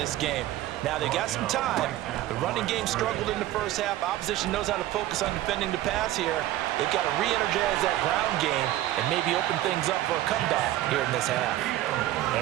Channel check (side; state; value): left; quieter; 14.6 dB